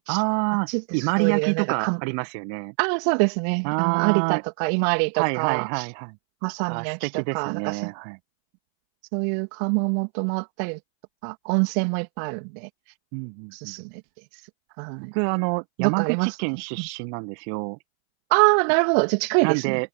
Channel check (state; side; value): silent; left; 63 dB below the other